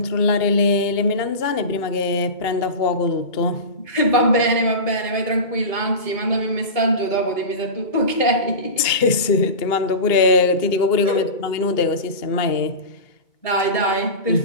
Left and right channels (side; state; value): right; late; 2.2 ms